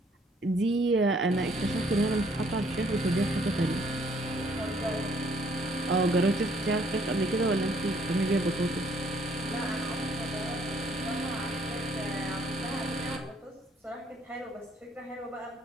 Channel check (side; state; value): both; normal; correlation 0.64